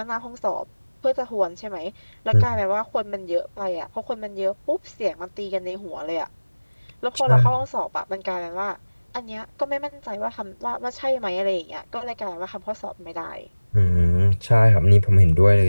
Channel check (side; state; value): both; inverted; correlation -1.00